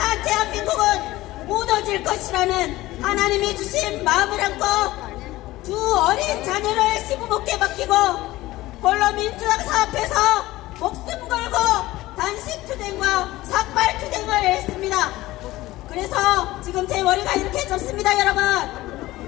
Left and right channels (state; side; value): quieter; right; 17.6 dB